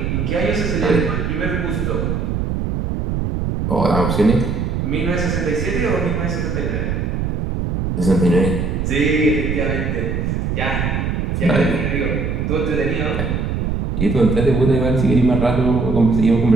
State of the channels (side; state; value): right; noise; rumble, 1 dB below the sound